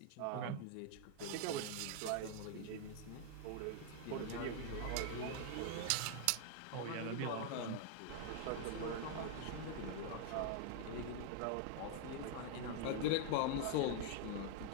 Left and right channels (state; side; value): different; both; correlation 0.00